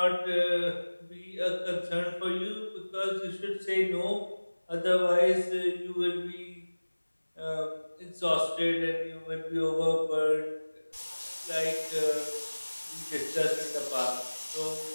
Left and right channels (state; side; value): inverted; both; correlation -1.00